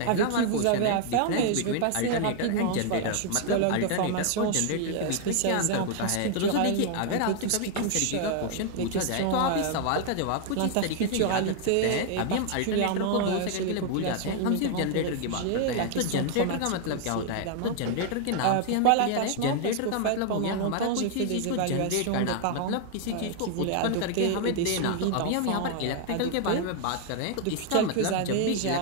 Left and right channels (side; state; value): both; different; correlation 0.00